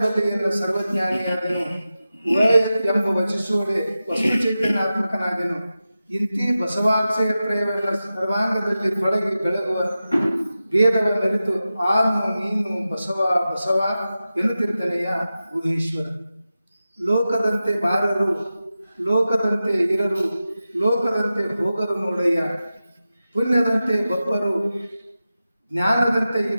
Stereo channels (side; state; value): both; inverted; correlation -0.93